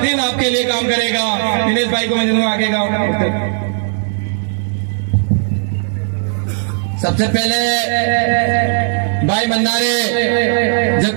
आपके लिए काम करेगा। दिनेश भाई को मैं दूंगा आगे का। सबसे पहले भाई मंदारे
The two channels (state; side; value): silent; left; 62 dB below the other